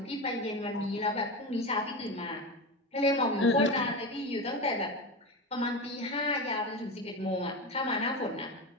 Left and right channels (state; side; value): normal; both; correlation 0.22